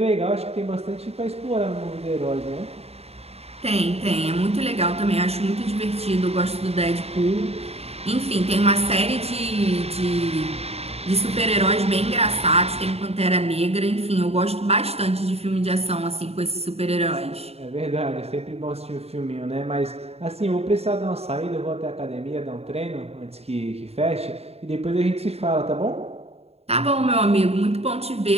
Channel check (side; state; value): left; late; 0.30 ms